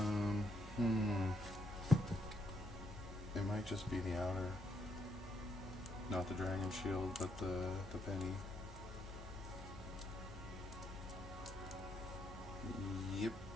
It might just be the outer. Not the dragon shield, but the penny. Yep.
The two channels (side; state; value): both; normal; correlation 0.76